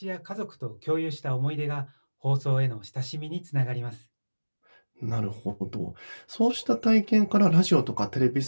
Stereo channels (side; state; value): both; inverted; correlation -1.00